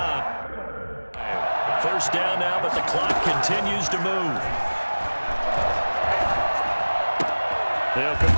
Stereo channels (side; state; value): both; inverted; correlation -1.00